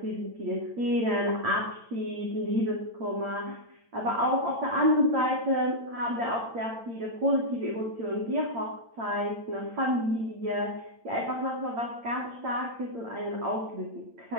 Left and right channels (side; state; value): left; late; 8.8 ms